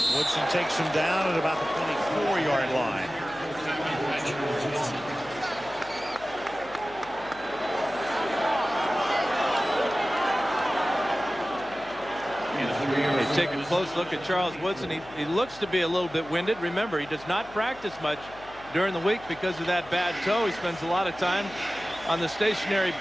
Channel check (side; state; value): left; noise; hum, 21 dB below the sound